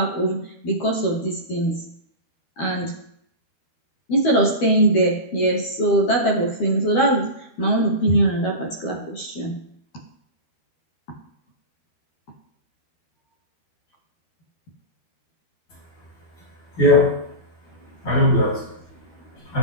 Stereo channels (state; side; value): late; right; 12 ms